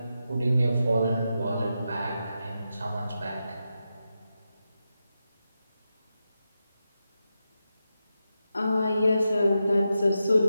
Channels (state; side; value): inverted; both; correlation -0.89